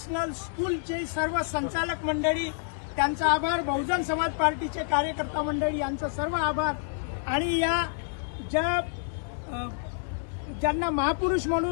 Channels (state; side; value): silent; right; digital silence